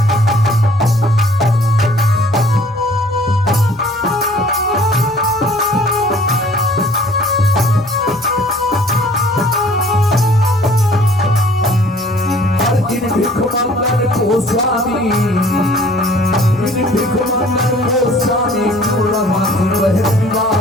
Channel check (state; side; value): normal; both; correlation 0.54